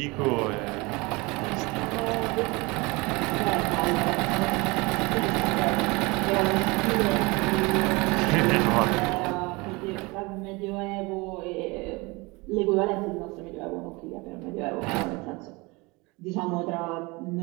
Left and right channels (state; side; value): quieter; left; 25.2 dB